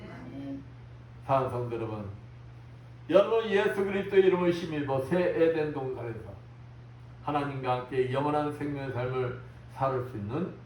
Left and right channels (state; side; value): identical; both; correlation 1.00